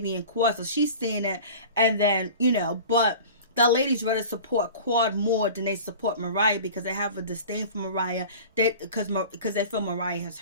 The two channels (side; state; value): both; inverted; correlation -0.38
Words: Quad, so she's seeing it, and then but the ladies rather support Quad more than they support Mariah because they have a disdain for Mariah. Because they feel Mariah has